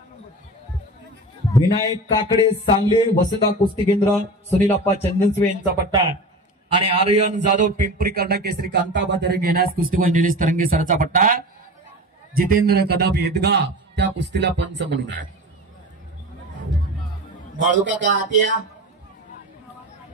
विनायक काकडे सांगली वसंता कुस्ती केंद्र सुनीलप्पा चंदनसवे यांचा पट्टा. आणि आर्यन जाधव पिंपरी कर्णा केसरी कांताबादरे घेण्यास कुस्ती निलेश तरंगे सरचा पट्टा. जितेंद्र कदम येदगा त्या कुस्तीला पंच म्हणून आहे. बाळूकाका आरतीया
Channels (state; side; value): normal; both; correlation 0.31